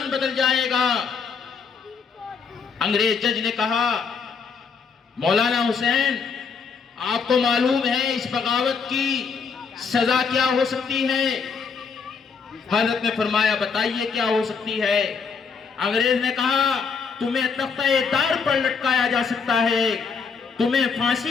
بدل جائے گا۔ انگریز جج نے کہا مولانا حسین آپ کو معلوم ہے اس بغاوت کی سزا کیا ہو سکتی ہے؟ حضرت نے فرمایا بتائیے کیا ہو سکتی ہے؟ انگریز نے کہا تمہیں تختہ دار پر لٹکایا جا سکتا ہے، تمہیں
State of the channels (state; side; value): quieter; right; 5.6 dB